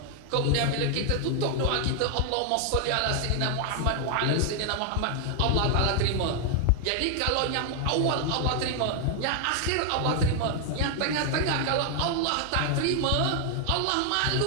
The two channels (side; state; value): both; different; correlation 0.00